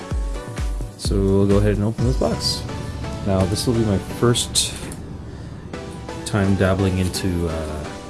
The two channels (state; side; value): identical; both; correlation 1.00